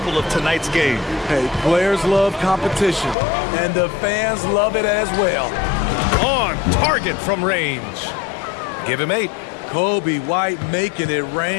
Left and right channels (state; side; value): drops out; right; at 3.2 s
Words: of tonight's game. Hey, players love competition, and the fans love it as well. On target from range. Give him 8. Kobe White making it